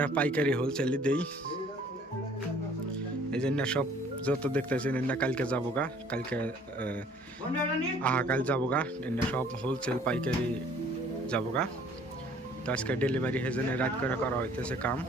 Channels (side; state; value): both; normal; correlation 0.56